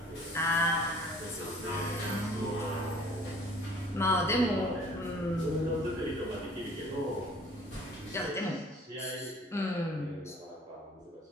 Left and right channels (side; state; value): both; normal; correlation 0.52